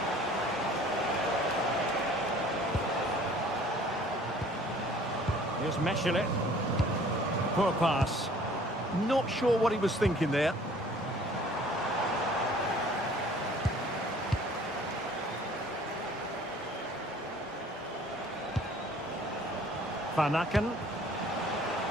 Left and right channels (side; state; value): both; normal; correlation 0.52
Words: Here's Meshelet. Poor pass. Not sure what he was thinking there. Van Aken.